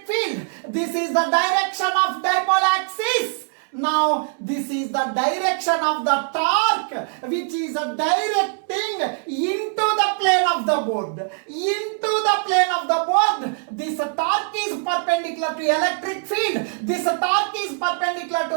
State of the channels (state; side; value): silent; left; 57 dB below the other